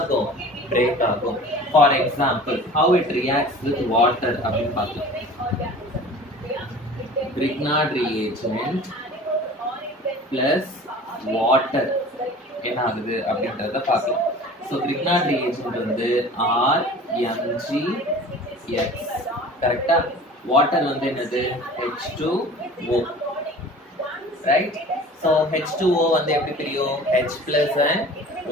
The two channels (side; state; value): both; normal; correlation 0.42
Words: பிரேக் ஆகும். For example how it reacts with water அப்படின்னு பார்க்கலாம். Grignard reagent plus water என்ன ஆகுது அப்படின்றத பார்க்கலாம். ஸோ Grignard reagent வந்து RMgX, கரெக்டா? வாட்டர் வந்து என்னது, H2O, ரைட்? ஸோ H2O வந்து எப்படி பிரியும், H plus and